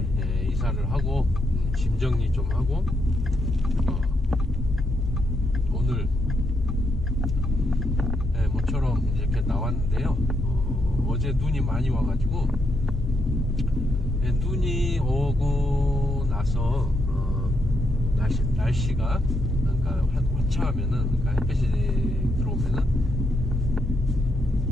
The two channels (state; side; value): normal; both; correlation 0.78